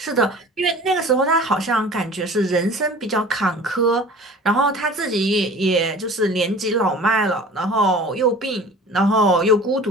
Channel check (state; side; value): normal; both; correlation 0.42